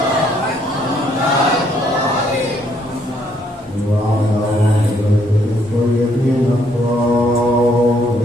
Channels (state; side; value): normal; both; correlation 0.69